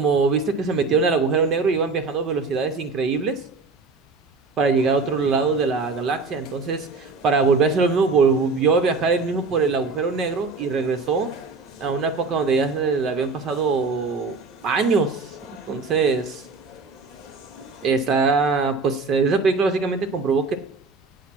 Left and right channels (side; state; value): left; quieter; 4.0 dB